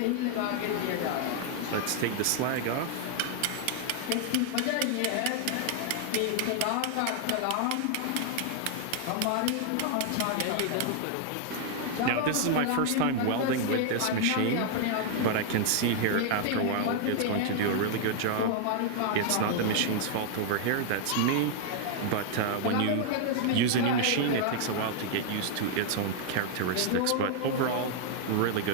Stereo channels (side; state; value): both; different; correlation 0.00